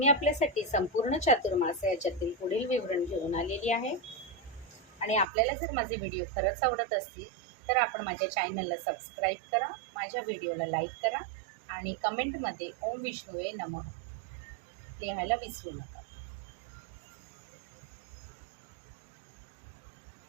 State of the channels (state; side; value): drops out; left; at 5.2 s